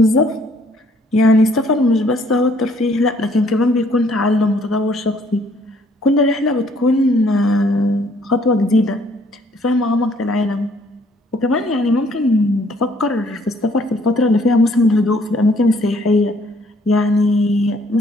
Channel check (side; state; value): both; normal; correlation 0.63